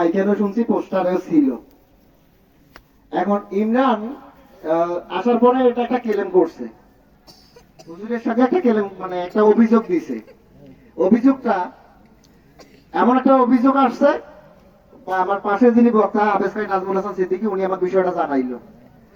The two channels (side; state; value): both; identical; correlation 1.00